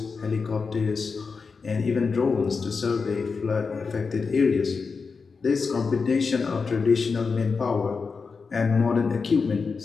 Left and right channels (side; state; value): right; quieter; 4.9 dB